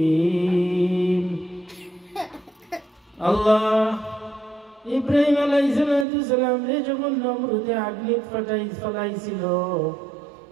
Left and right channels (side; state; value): left; drops out; at 6.1 s